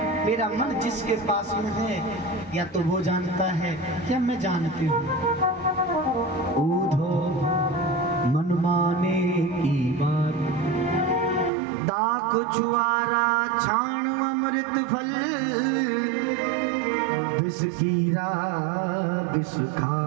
मेरा मन जिसके पास में है या तो वो जानता है या मैं जानती हूँ। ऊधो मन माने की बात, दाख छुआरा छाण अमृत फल, विष कीरा विष खा।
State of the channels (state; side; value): drops out; left; at 11.5 s